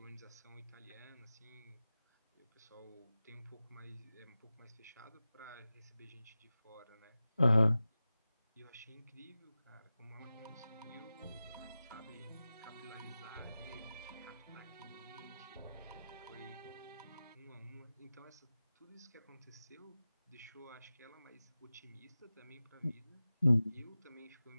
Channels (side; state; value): both; inverted; correlation -0.95